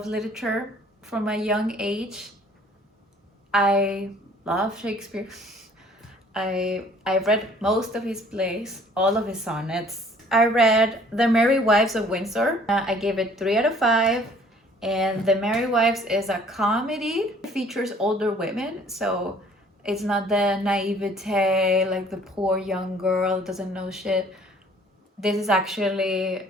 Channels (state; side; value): normal; both; correlation 0.56